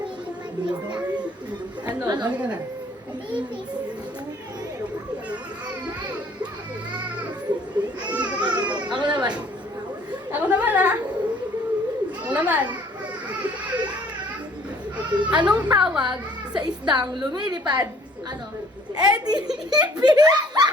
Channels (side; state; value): both; normal; correlation 0.57